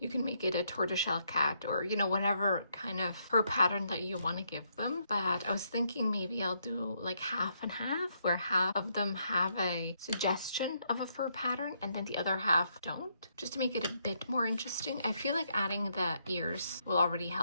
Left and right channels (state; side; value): inverted; both; correlation -0.75